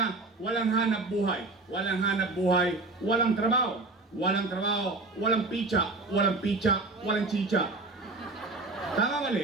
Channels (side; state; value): left; quieter; 3.3 dB